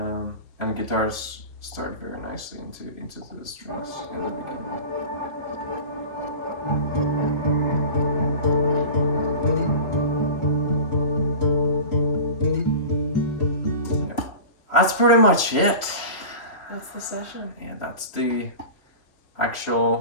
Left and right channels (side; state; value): right; late; 3.0 ms